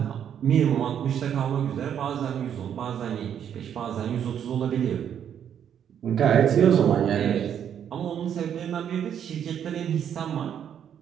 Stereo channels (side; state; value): left; quieter; 9.0 dB